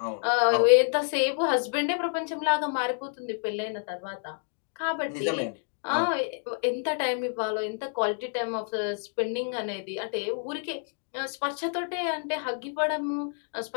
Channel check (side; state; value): right; silent; 59 dB below the other